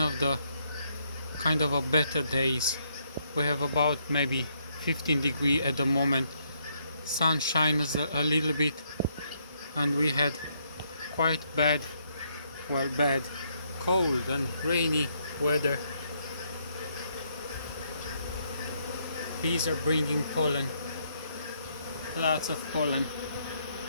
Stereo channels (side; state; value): both; inverted; correlation -0.73